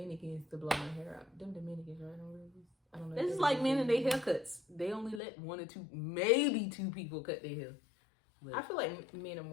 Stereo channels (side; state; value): right; drops out; at 5.2 s